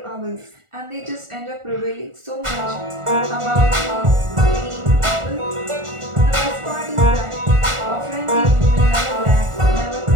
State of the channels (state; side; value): late; left; 1.4 ms